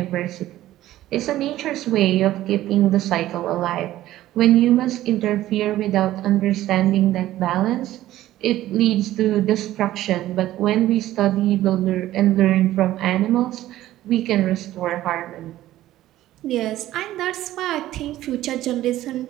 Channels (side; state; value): left; quieter; 14.5 dB